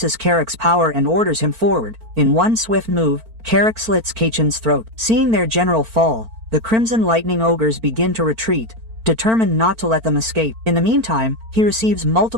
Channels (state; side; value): late; left; 4.4 ms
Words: Carrick's power and orders him forward. In one swift move, Carrick slits Kaichin's throat. Seeing their general fall, the Crimson Lightning ogres begin to retreat, determined not to let them escape. In the meantime, he receives